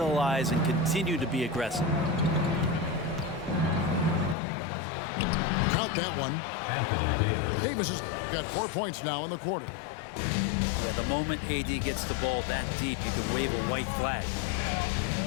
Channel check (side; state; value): right; drops out; at 4.4 s